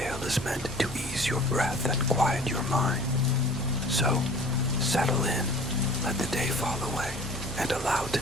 is meant to ease your breath and quiet your mind. So, settle in, let the day fall away, and allow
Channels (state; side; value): normal; both; correlation 0.46